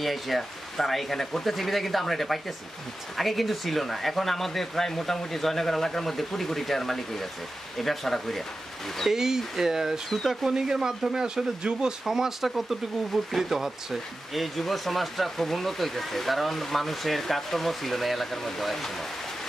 এসে তারা এখানে করতেছে, বিধায় কিন্তু আমরা এটা পাইতেছি। আগে কিন্তু ছিল না। এখন আমাদের প্রায় মোটামুটি জয়নগর এলাকার মধ্যে কোটি কোটি টাকার মালিক হয়ে গেছে এই ব্যবসাটা করে। এই সুতা কোনিংয়ের মাধ্যমে আসলে যুব সমাজটা কতটুকু উপকৃত হচ্ছে? এই যুব সমাজটা খুব উন্নত হইতেছে, কারণ মানুষের কাজকর্ম ছিল না এলাকার মধ্যে এক সময়।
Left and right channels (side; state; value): both; normal; correlation 0.93